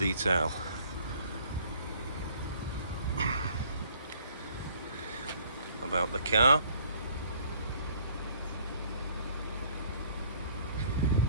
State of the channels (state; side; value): inverted; both; correlation -0.58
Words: About the car.